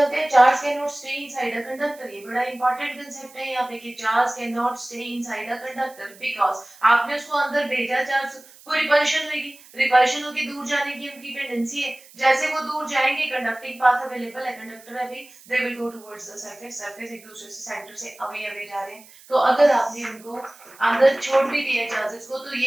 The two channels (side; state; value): right; noise; hiss, 23 dB below the sound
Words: हैं। Charge can not stay inside a conductor, ये बड़ा इंपॉर्टेंट कंसेप्ट है यहाँ पे कि charge can not stay inside a conductor because आपने उसको अंदर भेजा, चार्ज को रिपल्शन होगी, रिपल्शन होगी, दूर जाने की उनकी टेंडेंसी है, जैसे वो दूर जाएंगे, कंडक्टिंग पाथ अवेलेबल है, कंडक्टर है भी, they will go towards the surface, surface एक दूसरे से, सेंटर से अवे अवे जा रहे हैं। तो अगर आपने उनको अंदर छोड़ भी दिया चार्जेस को, तो